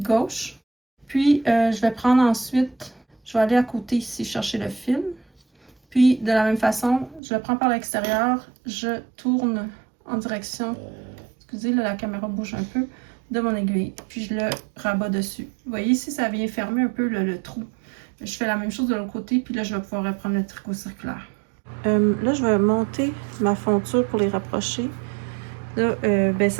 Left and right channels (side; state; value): left; drops out; at 7.2 s